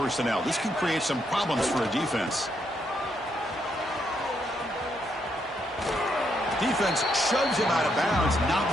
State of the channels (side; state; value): both; normal; correlation 0.77